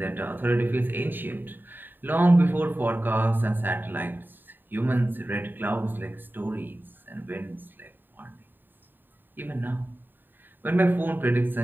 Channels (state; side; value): late; left; 0.092 ms